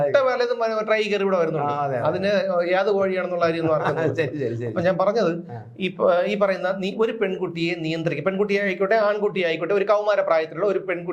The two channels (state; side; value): identical; both; correlation 1.00